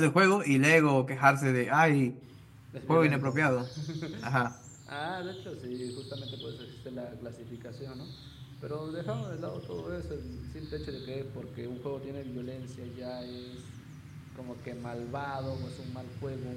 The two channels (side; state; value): both; identical; correlation 1.00